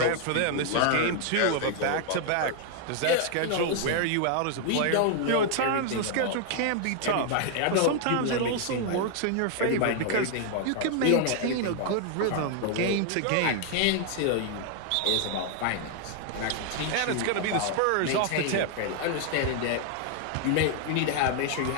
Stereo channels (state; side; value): different; both; correlation 0.00